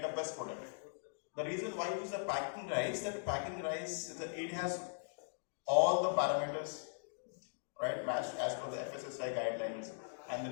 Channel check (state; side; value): silent; right; digital silence